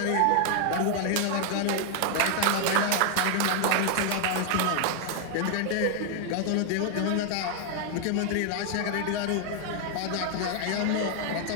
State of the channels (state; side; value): different; both; correlation 0.00